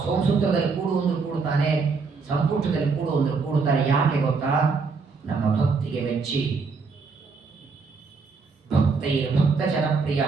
ಸೋಮಸೂತ್ರದಲ್ಲಿ ಕೂಡುವಂದ್ರು ಕೂಡುತ್ತಾನೆ, ಸಂಪುಟದಲ್ಲಿ ಕೂಡುವಂದ್ರು ಕೂಡುತ್ತಾನೆ. ಯಾಕೆ ಗೊತ್ತಾ? ನಮ್ಮ ಭಕ್ತಿಗೆ ಮೆಚ್ಚಿ. ಭಕ್ತೈರ್ ಭಕ್ತ ಜನಪ್ರಿಯ.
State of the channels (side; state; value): left; quieter; 4.7 dB